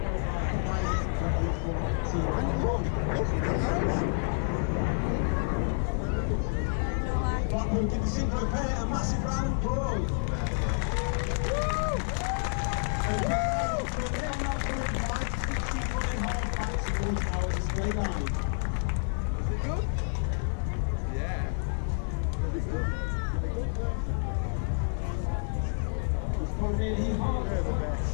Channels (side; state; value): right; silent; 58 dB below the other